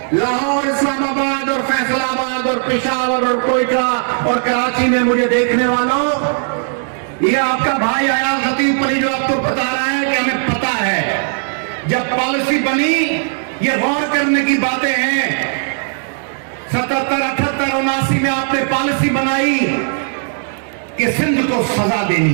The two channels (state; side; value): silent; left; 68 dB below the other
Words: لاہور, اسلام آباد اور فیصل آباد اور پشاور اور کوئٹہ اور کراچی میں مجھے دیکھنے والوں, یہ آپ کا بھائی آیا خطیب پلی جو آپ کو بتا رہا ہے کہ ہمیں پتا ہے جب پالیسی بنی, یہ غور کرنے کی باتیں ہیں. 77, 78, 79 میں آپ نے پالیسی بنائی کہ سندھ کو سزا